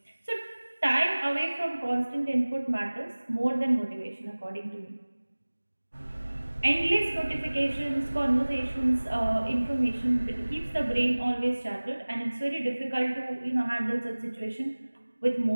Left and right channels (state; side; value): inverted; both; correlation -1.00